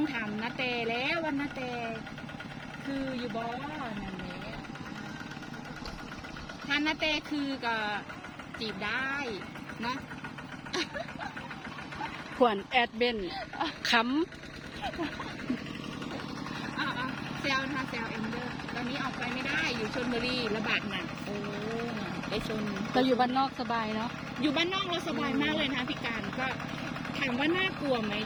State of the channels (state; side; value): identical; both; correlation 1.00